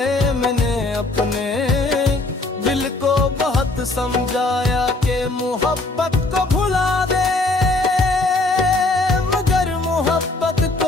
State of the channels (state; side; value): quieter; right; 3.0 dB